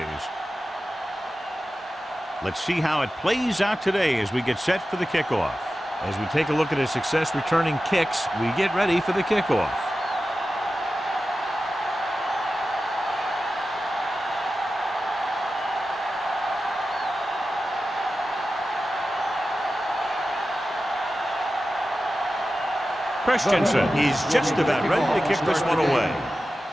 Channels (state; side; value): normal; both; correlation 0.93